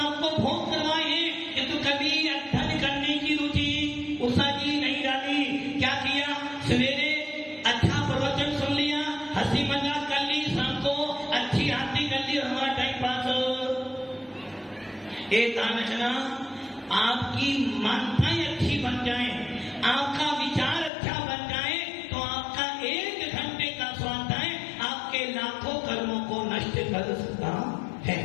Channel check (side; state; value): right; drops out; at 20.9 s